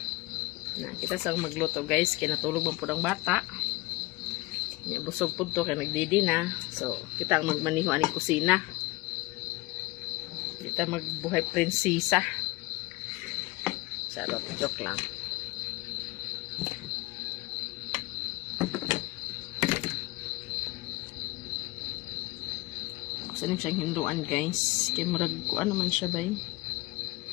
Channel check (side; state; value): right; quieter; 21.7 dB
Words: Na kita sang magluto guys, kinatulog man pud ang bata. Ya, busog po to kaya nagdidi na. So, kita ang magmaniho aning kusina. Kita magbuhay prinsesa. Charot, joke lang. Gusto niyo siyang hinduan guys. Kaya murag ko ano man siya ba eh.